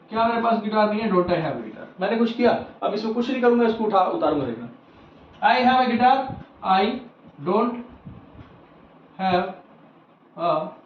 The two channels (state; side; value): identical; both; correlation 1.00